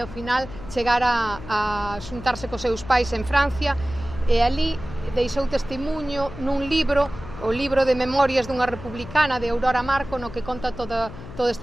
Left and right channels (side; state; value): left; noise; hum, 13 dB below the sound